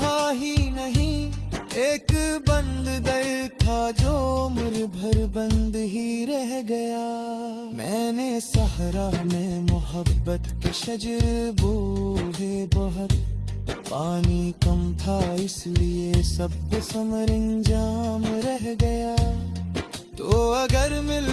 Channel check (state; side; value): identical; both; correlation 1.00